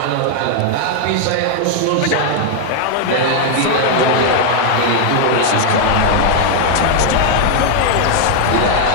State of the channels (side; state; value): both; different; correlation 0.00